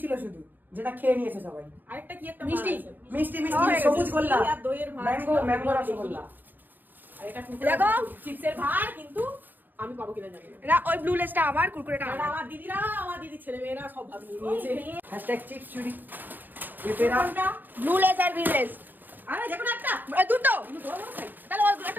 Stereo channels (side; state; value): left; late; 0.088 ms